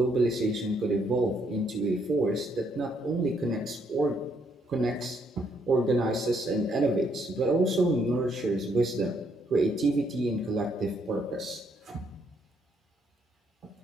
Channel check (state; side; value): normal; both; correlation 0.72